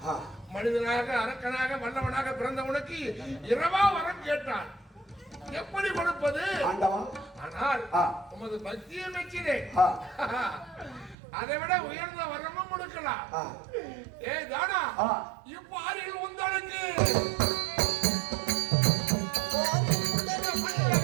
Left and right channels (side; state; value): left; drops out; at 11.2 s